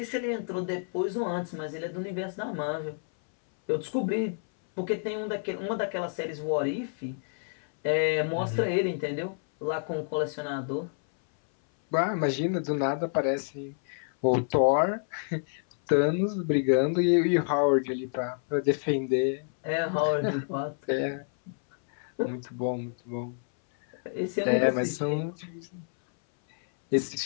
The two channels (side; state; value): right; silent; 59 dB below the other